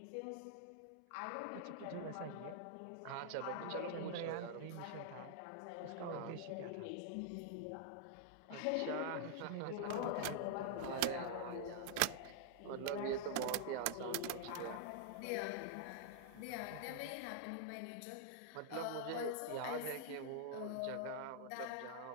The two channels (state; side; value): different; both; correlation -0.01